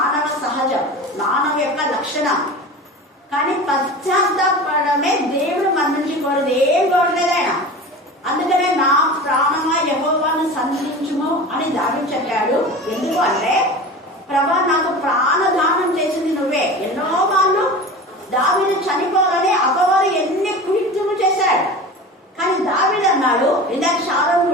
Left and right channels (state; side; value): normal; both; correlation 0.33